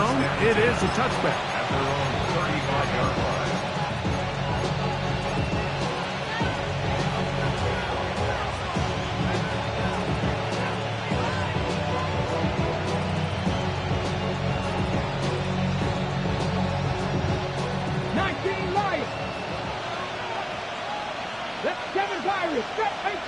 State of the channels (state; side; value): identical; both; correlation 1.00